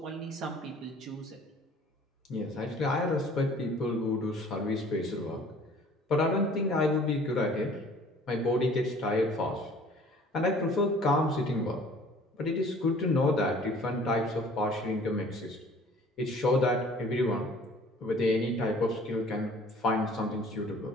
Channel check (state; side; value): normal; both; correlation 0.52